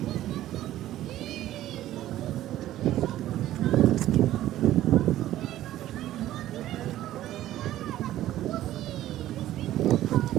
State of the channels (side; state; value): left; quieter; 13.7 dB